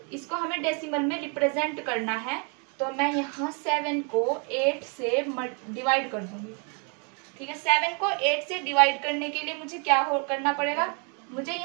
इसको हमें डेसिमल में रिप्रेजेंट करना है। तो मैं यहाँ 7 को 8 से डिवाइड कर दूंगी। ठीक है, 7 को 8 से डिवाइड करने के लिए मुझे क्या करना पड़ेगा, मुझे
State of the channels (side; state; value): left; quieter; 37.5 dB